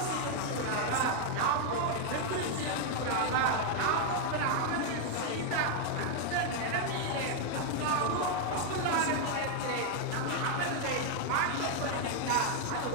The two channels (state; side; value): different; both; correlation 0.00